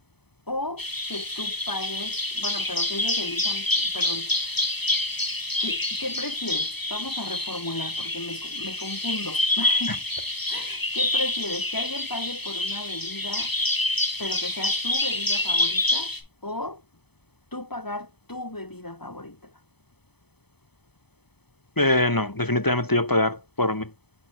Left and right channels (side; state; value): right; late; 0.98 ms